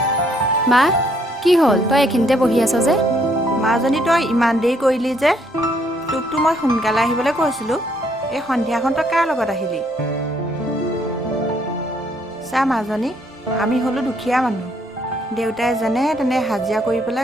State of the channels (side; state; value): both; normal; correlation 0.69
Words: মা কি হ'ল তই এইখিনিতে বহি আছ যে মাজনী তই ইমান দেৰি কৰিলি যে তোকতো মই সোনকালে আহিবলৈ কৈছিলোঁ এই সন্ধিয়াখন তই কাৰ লগত আহিলি চা মাজনী আমি হ'লোঁ দুখীয়া মানুহ দেউতাই যেনে তেনে হাজিৰা কৰি